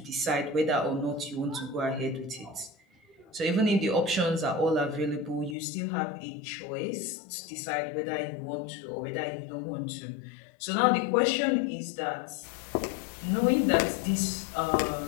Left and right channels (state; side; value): drops out; right; at 5.6 s